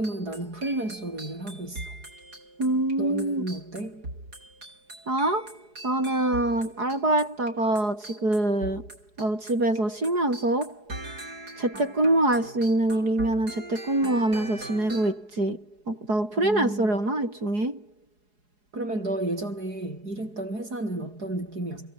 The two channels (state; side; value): late; left; 4.8 ms